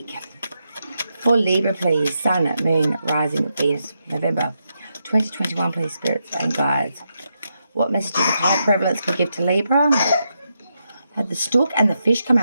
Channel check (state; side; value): inverted; both; correlation -0.84